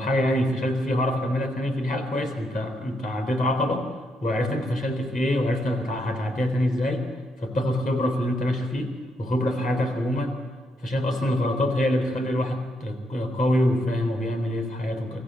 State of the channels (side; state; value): both; normal; correlation 0.78